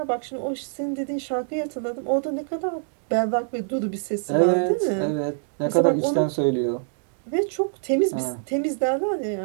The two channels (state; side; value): silent; left; digital silence